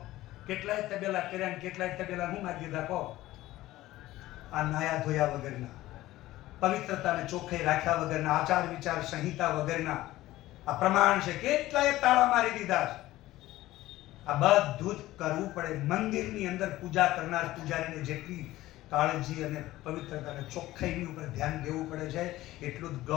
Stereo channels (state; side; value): quieter; right; 16.3 dB